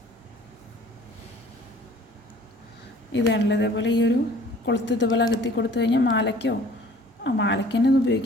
ഇതാണല്ലോ ഇതേപോലെ ഈ ഒരു കൊളുത്ത് ഇതുപോലെ അകത്തി കൊടുത്തു കഴിഞ്ഞാൽ മാലയ്ക്കോ മാലയ്ക്ക് തന്നെ ഇത്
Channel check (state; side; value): normal; both; correlation 0.51